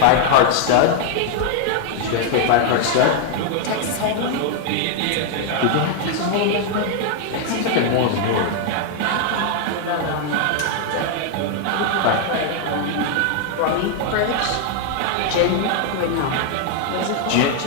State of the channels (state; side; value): different; both; correlation 0.00